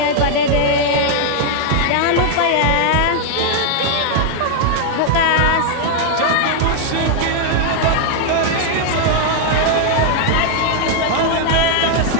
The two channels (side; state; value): both; different; correlation 0.00